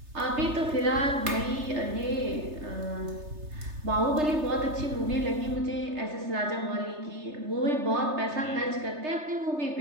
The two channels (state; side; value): late; left; 3.3 ms